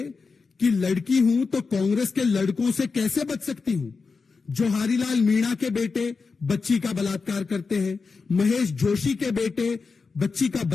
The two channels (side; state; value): right; quieter; 4.7 dB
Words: कि लड़की हूं तो कांग्रेस के लड़कों से कैसे बच सकती हूं। जोहारीलाल मीणा के बेटे बच्ची का बलात्कार करते हैं, महेश जोशी के बेटे बच्ची का